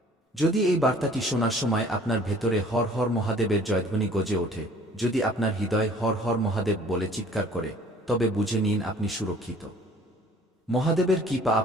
যদি এই বার্তাটি শোনার সময় আপনার ভেতরে হর হর মহাদেবের জয়ধ্বনি গজে ওঠে, যদি আপনার হৃদয় হর হর মহাদেব বলে চিৎকার করে, তবে বুঝে নিন আপনি সুরক্ষিত। মহাদেবের কৃপা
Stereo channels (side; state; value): both; normal; correlation 0.52